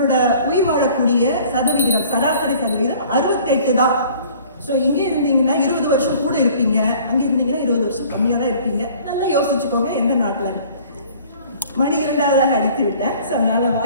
உயிர் வாழக்கூடிய சதவிகிதம், சராசரி சதவிகிதம் 68 தான். ஸோ இங்கே இருந்தீங்கன்னா 20 வருஷம் கூட இருப்பீங்க, அங்கே இருந்தீங்கன்னா 20 வருஷம் கம்மியாக தான் இருப்பீங்க. நல்லா யோசிச்சுக்கோங்க எந்த நாட்டில். மணி 2வது அடித்து விட்டேன். ஸோ அதனால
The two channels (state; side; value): inverted; both; correlation -0.51